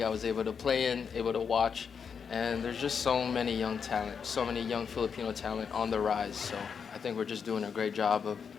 I was able to play in, able to watch, and there's just so many young talent, so many young Filipino talent on the rise. So I think we're just doing a great job of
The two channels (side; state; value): right; quieter; 6.5 dB